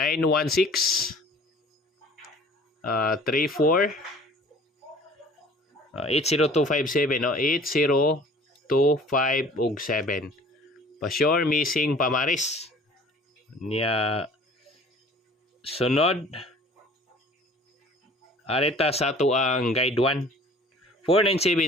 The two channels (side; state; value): both; normal; correlation 0.49